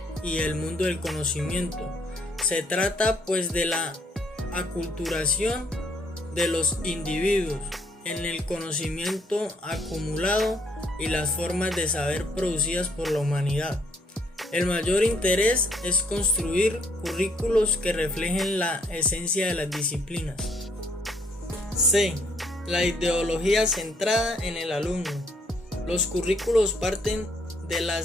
y el mundo del conocimiento. Se trata pues de la aculturación de los individuos en el conocimiento acumulado y las formas de saber producidas por la humanidad. El mayor interés es construir currículos que reflejen la esencia de las disciplinas. C. La ideología centrada en el alumno. Los currículos parten de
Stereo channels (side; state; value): both; normal; correlation 0.67